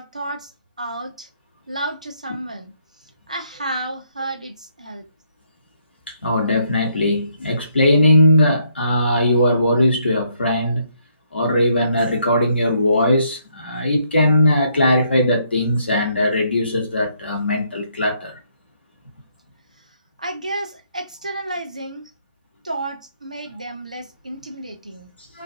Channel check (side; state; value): both; inverted; correlation -0.72